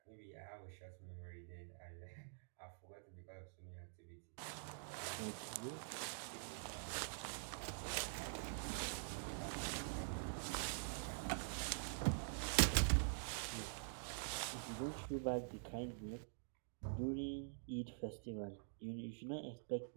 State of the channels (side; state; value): left; silent; digital silence